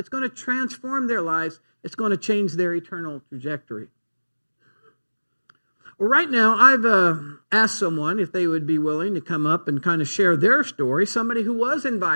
going to transform their lives. It's going to change their eternal trajectory. Well, right now, I've asked someone if they would be willing to come up and kind of share their story, somebody who was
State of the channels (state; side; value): inverted; both; correlation -1.00